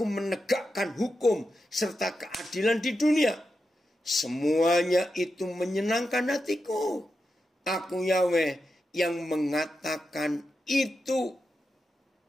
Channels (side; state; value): both; normal; correlation 0.88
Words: menegakkan hukum serta keadilan di dunia. Semuanya itu menyenangkan hatiku. Aku Yahweh yang mengatakan itu.